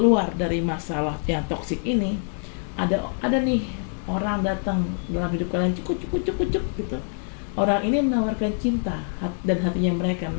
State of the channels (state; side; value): silent; right; 57 dB below the other